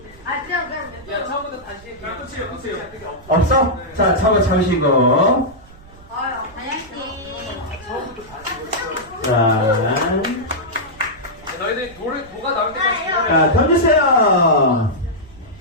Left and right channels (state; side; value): noise; right; rumble, 24 dB below the sound